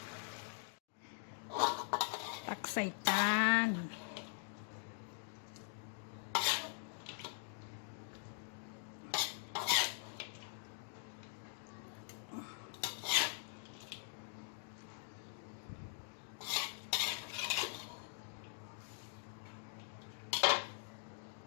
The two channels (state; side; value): silent; right; digital silence